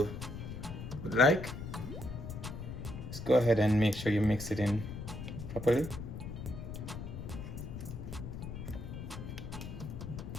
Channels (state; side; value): noise; left; rumble, 8 dB below the sound